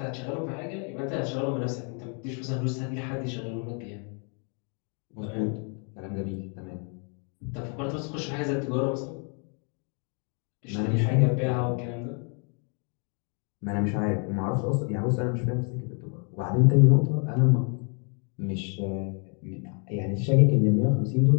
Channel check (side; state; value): right; quieter; 39.4 dB